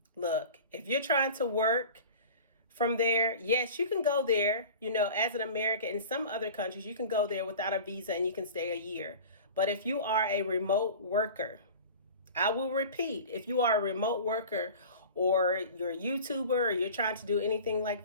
look, if you're trying to work from there, yes, you can go there, as an American. In some other countries, you can go there without a visa and you can stay a year. But if you are a remote worker, I will repeat, if you are a remote worker, or you're a YouTuber, or you're trying to do anything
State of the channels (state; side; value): inverted; both; correlation -0.38